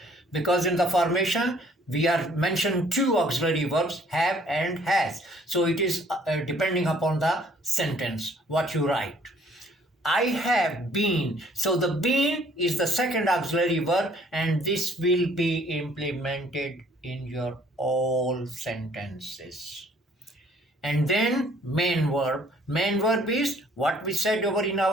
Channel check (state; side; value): normal; both; correlation 0.60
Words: because in the formation we are mentioned two auxiliary verbs, have and has. So it is depending upon the sentence what you write. I have been. So the been is the second auxiliary verb and this will be implemented in your all sentences. and then main verb. Main verb is what we said over in